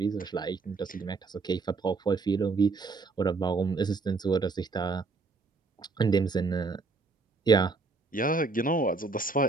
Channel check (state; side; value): quieter; left; 4.1 dB